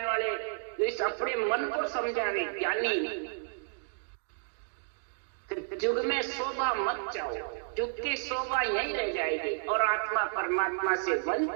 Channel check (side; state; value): left; silent; digital silence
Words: जो इस अपने मन को समझावे, ज्ञानी। युग में शोभा मत चाहो, युग की शोभा यही रह जाएगी और आत्मा परमात्मा से